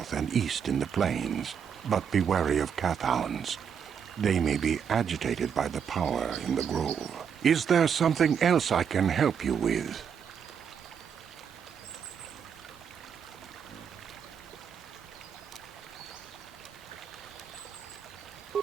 and east in the plains, but be wary of Kathhounds. They may be agitated by the power in the grove. Is there something else I can help you with?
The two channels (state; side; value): quieter; left; 7.4 dB